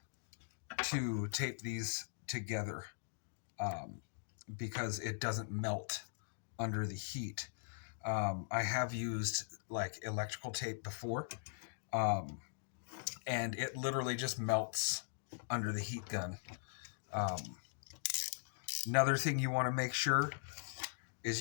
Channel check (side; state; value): right; silent; digital silence